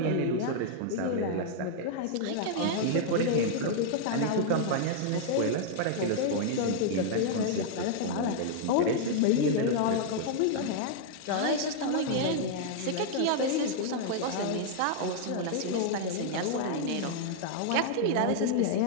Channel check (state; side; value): different; both; correlation -0.01